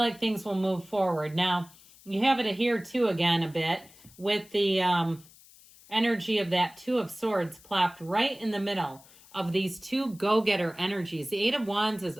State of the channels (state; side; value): noise; left; hiss, 24 dB below the sound